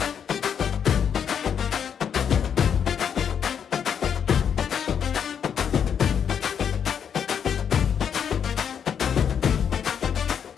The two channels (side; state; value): right; quieter; 7.9 dB